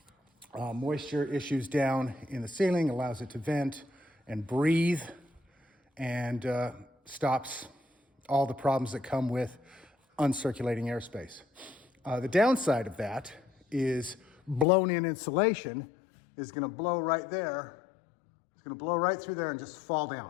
moisture issues down in the ceiling, allows it to vent and breathe, and stops all the problems that come with uncirculating airspace. The downside of that is blown in insulation is gonna blow right there. It's gonna blow right through there and just fall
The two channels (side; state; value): right; drops out; at 14.7 s